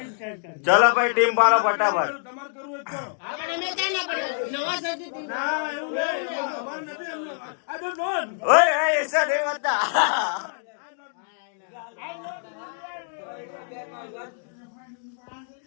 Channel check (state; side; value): silent; right; digital silence